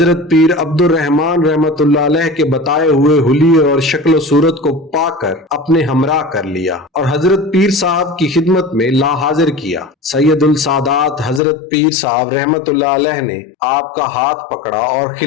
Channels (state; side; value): drops out; right; at 11.4 s